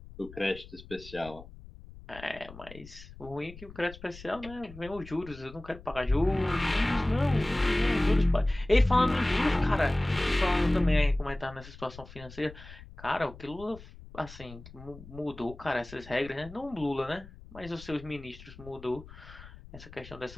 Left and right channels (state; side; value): noise; left; rumble, 17 dB below the sound